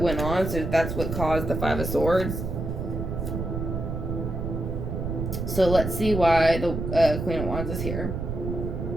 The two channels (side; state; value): right; noise; rumble, 4 dB below the sound